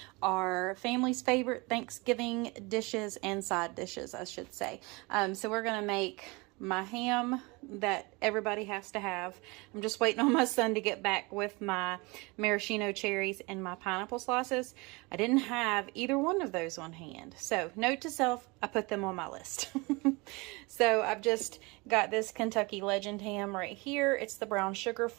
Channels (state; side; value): quieter; left; 26.2 dB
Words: our family's favorite Thanksgiving dishes and side dishes, I should say. So we're gonna make my ham that everybody has to have. I'm just waiting on my son to get back with my maraschino cherries and my pineapple slices. I didn't have either one of those on hand. So note to self, I put them on my list. So I've just got this Kentucky Legend ham right here. It's the brown sugar